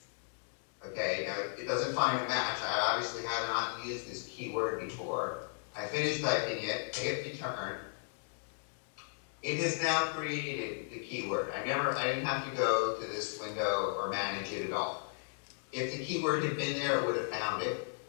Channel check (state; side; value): silent; right; digital silence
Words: Okay, now it doesn't find a match. I obviously have not used this keyword before. I finish typing it, I hit return. It has now created the keyword. I didn't have to go to this window or manage it at all. If the keyword had been there, it would have found it.